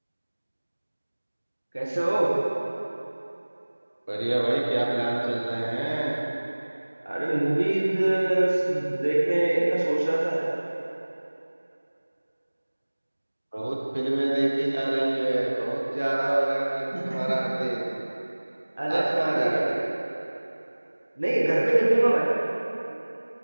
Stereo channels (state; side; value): inverted; both; correlation -1.00